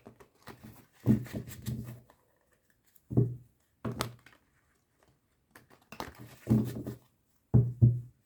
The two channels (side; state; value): both; identical; correlation 1.00